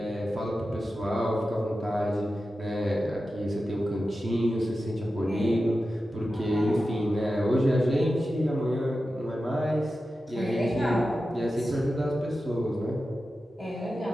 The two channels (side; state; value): both; normal; correlation 0.92